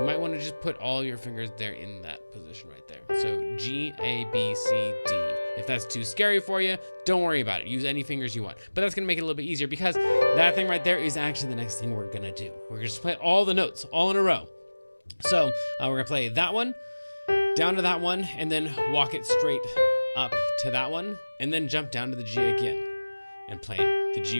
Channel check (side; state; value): both; inverted; correlation -1.00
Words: might want to just put all your fingers there in that position right there. So G, A, B, C, D. If that's too scary for you, don't worry about it. Use any fingers you want. But that's going to make it a little bit easier because that thing right there is actually the next thing we're going to do. We're going to play all the notes all in a row. So we're going to play that one, down to that one, and then walk it straight up to that one, and then jump down to the G again and play the G